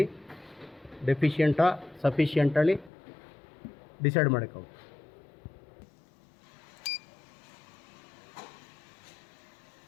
ಡೆಫಿಷಿಯೆಂಟಾ ಸಫಿಷಿಯೆಂಟಲ್ಲಿ ಡಿಸೈಡ್ ಮಾಡೋಕ್ಕಾಗುತ್ತೆ.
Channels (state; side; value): drops out; right; at 2.9 s